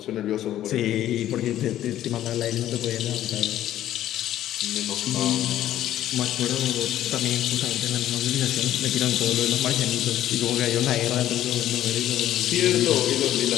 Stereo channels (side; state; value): right; quieter; 12.5 dB